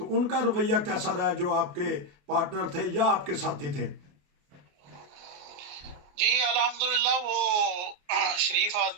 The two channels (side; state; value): left; late; 28 ms